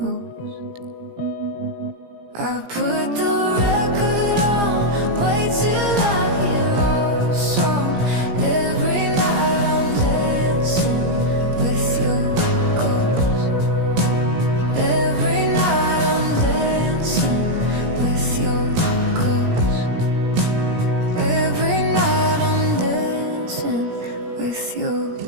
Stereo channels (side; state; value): left; late; 17 ms